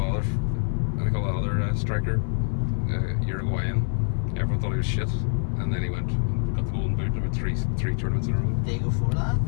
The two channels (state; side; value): silent; right; digital silence